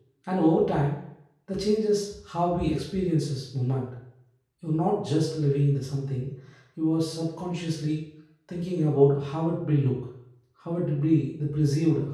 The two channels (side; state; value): both; identical; correlation 1.00